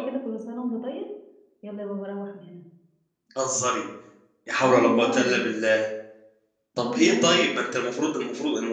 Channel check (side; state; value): both; identical; correlation 1.00